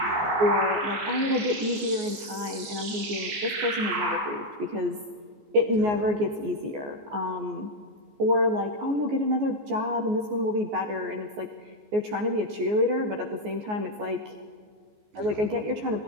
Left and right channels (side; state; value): left; late; 14 ms